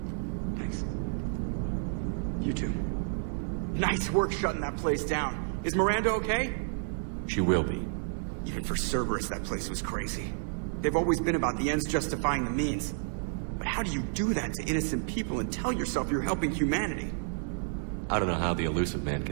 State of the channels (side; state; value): left; silent; 57 dB below the other